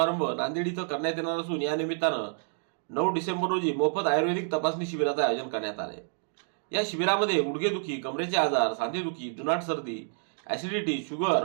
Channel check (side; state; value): left; silent; digital silence